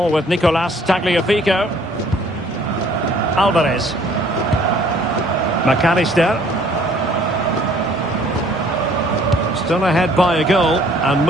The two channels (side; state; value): both; normal; correlation 0.58